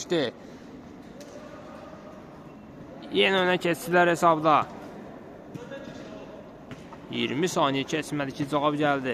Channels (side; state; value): both; identical; correlation 1.00